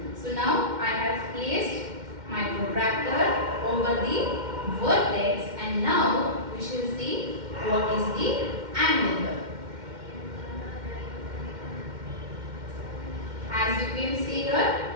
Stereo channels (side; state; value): left; late; 2.1 ms